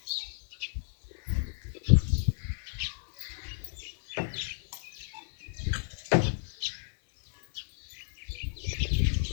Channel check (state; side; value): silent; right; digital silence